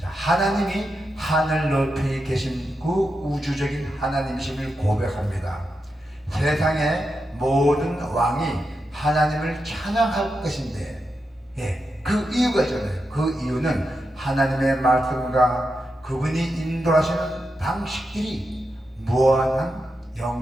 하나님이 하늘 높이 계신 그 우주적인 하나님이심을 고백합니다. 세상의 모든 왕이 하나님을 찬양할 것인데, 그 이유가 있잖아요. 그 이유는 하나님의 말씀과 그분이 인도하시는 방식들이 무한한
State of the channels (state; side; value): normal; both; correlation 0.87